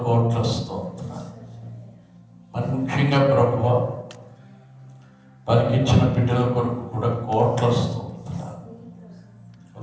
స్తోత్రాలు. మరి ముఖ్యంగా ప్రభువా, వారికి ఇచ్చిన బిడ్డల కొరకు కూడా కోట్ల స్తోత్రాలు.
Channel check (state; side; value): identical; both; correlation 1.00